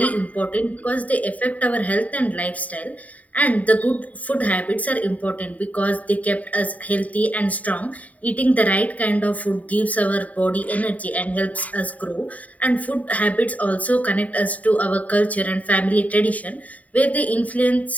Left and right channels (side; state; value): right; late; 0.071 ms